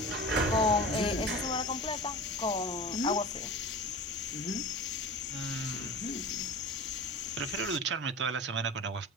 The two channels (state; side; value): normal; both; correlation 0.33